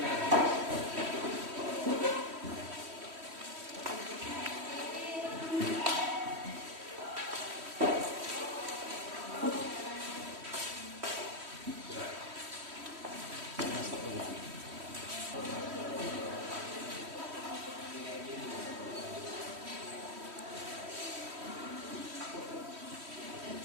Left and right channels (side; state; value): left; late; 3.1 ms